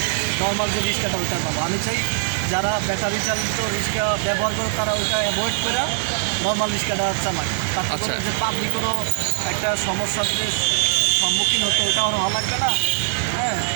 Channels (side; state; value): left; silent; digital silence